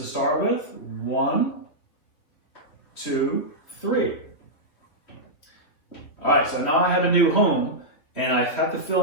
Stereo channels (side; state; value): right; late; 3.0 ms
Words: start with. 1, 2, 3. All right, so now I have a new home, and I have to